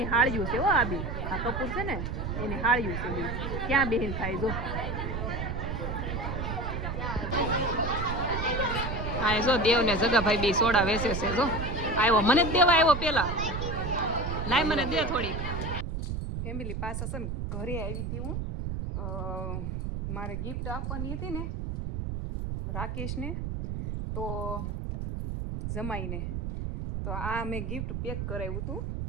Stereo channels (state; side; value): noise; right; rumble, 3 dB below the sound